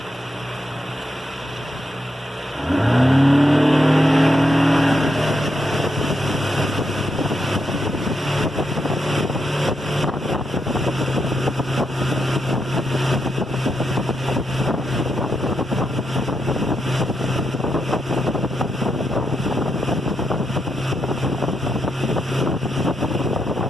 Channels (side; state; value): both; normal; correlation 0.82